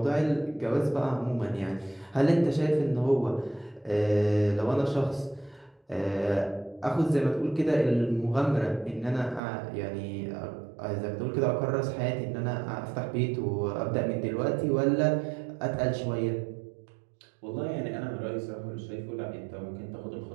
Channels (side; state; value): left; drops out; at 9.4 s